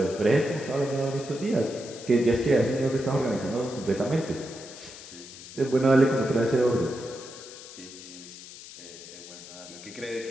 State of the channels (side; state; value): left; noise; hiss, 15 dB below the sound